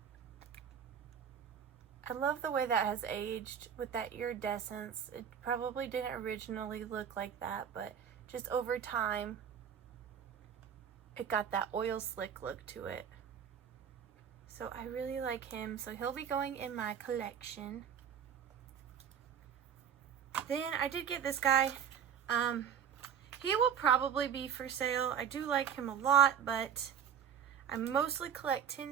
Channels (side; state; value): left; quieter; 8.3 dB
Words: I love the way that has aged with that iridescence. It probably didn't originally look like that, but just over time, it got that oil slick look to it. So I really like him. So he'll be going in my collection. Then I did get this guy. He will probably be for sale. I do like him a lot, but I mostly collect